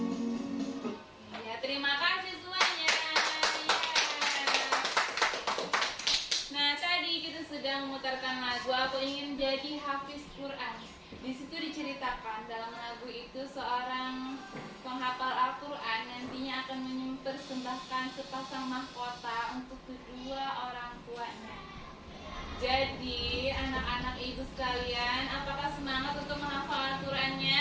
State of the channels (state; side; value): identical; both; correlation 1.00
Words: Ya, terima kasih semuanya. Ya. Nah, tadi kita sedang memutarkan lagu Aku Ingin Jadi Hafiz Quran. Di situ diceritakan dalam lagu itu seorang penghafal Al-Quran nantinya akan mempersembahkan sepasang mahkota untuk kedua orang tuanya. Jadi, anak-anak ibu sekalian, apakah semangat untuk menghafal